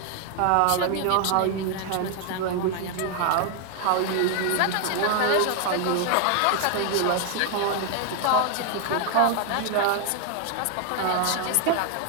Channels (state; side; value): different; both; correlation 0.01